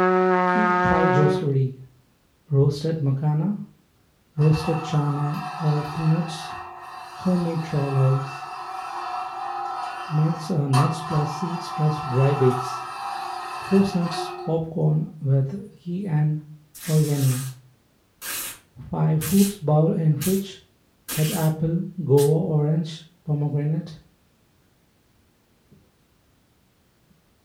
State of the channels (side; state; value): both; identical; correlation 1.00